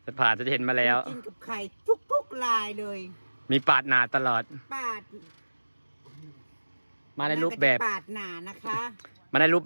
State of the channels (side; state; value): both; inverted; correlation -1.00